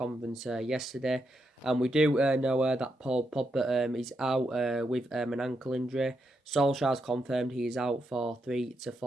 yesterday. And we do know that Paul Pogba is out with an ankle injury. Solskjaer's confirmed he is out for 3 to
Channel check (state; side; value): normal; both; correlation 0.82